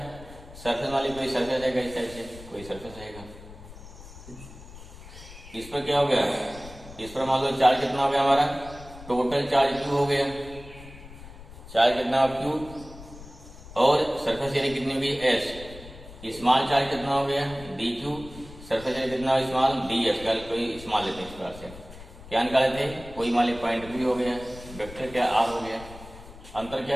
सरफेस वाली कोई सरफेस है इस साइड से, कोई सरफेस रहेगा, इस पर क्या हो गया, इस पर मान लो चार्ज कितना हो गया हमारा, टोटल चार्ज क्यू हो गया, चार्ज कितना क्यू, और सरफेस एरिया कितनी हो गई एस, स्मॉल चार्ज कितना हो गया डी क्यू, सरफेस एरिया कितना स्मॉल डी एस, कोई स्मॉल लेते हैं इस प्रकार से, क्या निकाले थे, कोई मान ली पॉइंट बी हो गया, वेक्टर क्या आर हो गया। अंतर क्या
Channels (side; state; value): left; noise; rumble, 16 dB below the sound